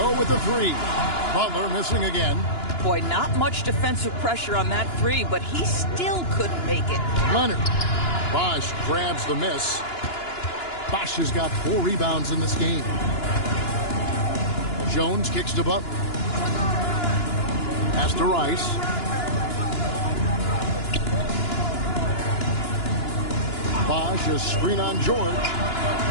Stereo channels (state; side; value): late; right; 2.9 ms